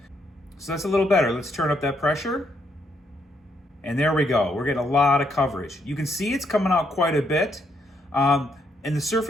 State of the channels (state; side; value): normal; both; correlation 0.74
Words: So that's a little better. Let's turn up that pressure. And there we go. We're getting a lot of coverage. You can see it's coming out quite a bit. And the